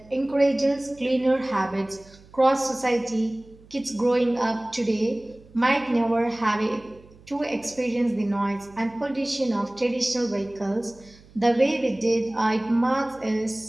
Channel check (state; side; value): noise; right; hum, 25 dB below the sound